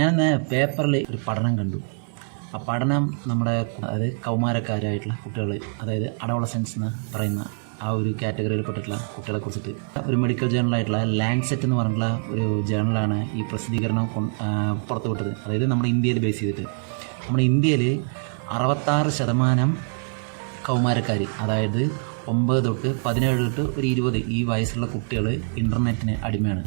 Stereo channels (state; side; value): silent; left; 62 dB below the other